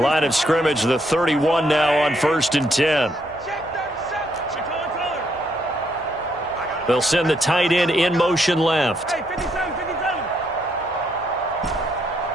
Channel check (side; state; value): right; noise; hum, 26 dB below the sound